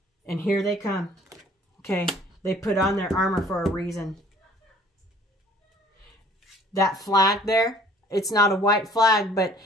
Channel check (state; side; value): normal; both; correlation 0.54